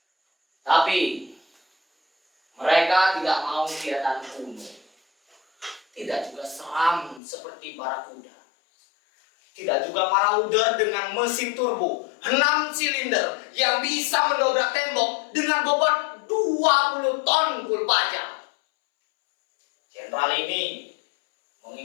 Tapi mereka tidak mau kelihatan kuno, tidak juga seram seperti Barakuda, tidak juga Marauder dengan mesin turbo 6 silinder yang bisa mendobrak tembok dengan bobot 20 ton full baja. Jenderal ini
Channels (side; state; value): right; drops out; at 7.2 s